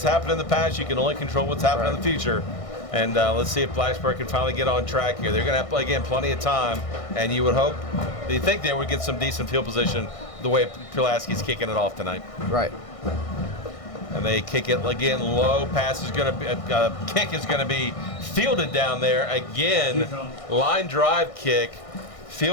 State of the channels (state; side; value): late; right; 1.6 ms